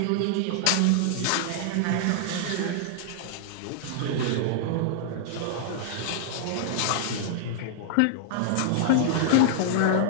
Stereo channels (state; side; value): different; both; correlation -0.01